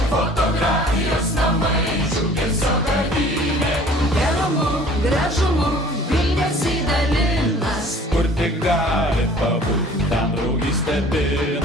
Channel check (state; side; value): normal; both; correlation 0.50